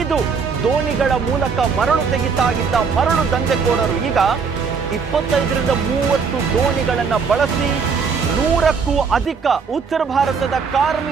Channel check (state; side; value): quieter; left; 5.6 dB